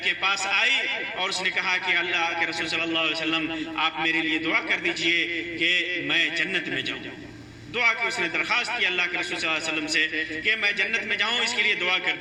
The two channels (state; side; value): identical; both; correlation 1.00